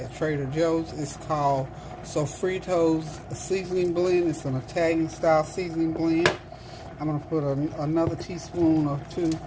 Trader Joe's. It's called Sofrito's seasoning blend. It's an Italian style seasoning blend. I'm going to put another teaspoon or two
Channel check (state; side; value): identical; both; correlation 1.00